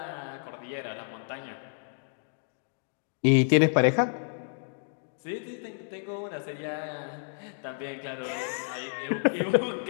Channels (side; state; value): right; silent; digital silence